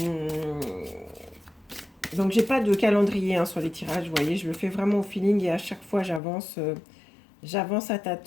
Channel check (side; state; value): right; drops out; at 6.2 s